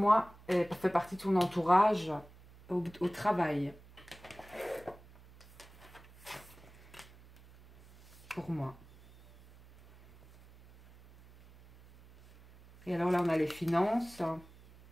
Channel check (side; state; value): right; noise; hum, 23 dB below the sound